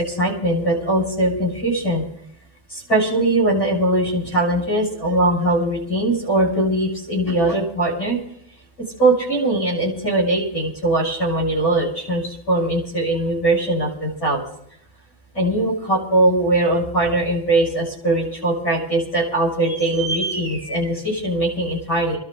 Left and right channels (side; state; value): right; late; 12 ms